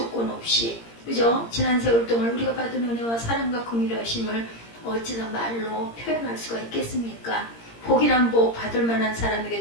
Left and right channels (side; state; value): right; late; 17 ms